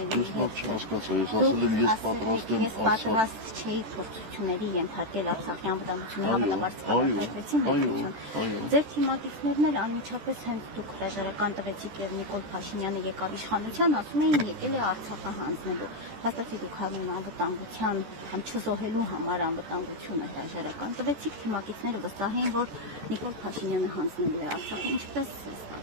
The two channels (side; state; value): left; late; 14 ms